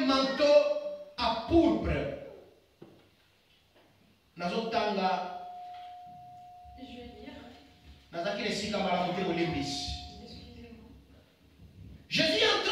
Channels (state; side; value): identical; both; correlation 1.00